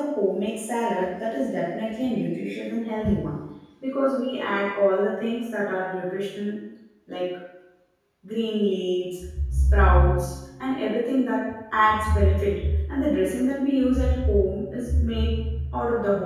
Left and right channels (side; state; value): both; identical; correlation 1.00